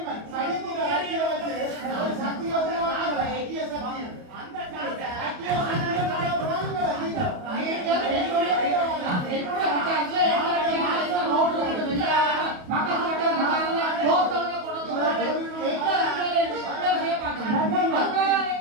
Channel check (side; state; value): left; late; 28 ms